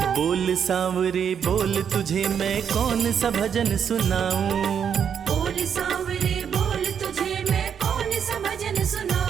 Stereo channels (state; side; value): quieter; left; 7.8 dB